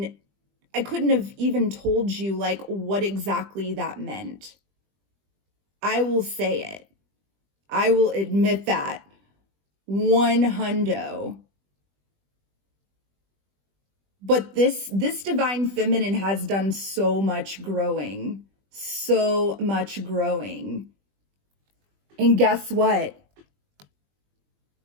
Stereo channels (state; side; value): late; left; 20 ms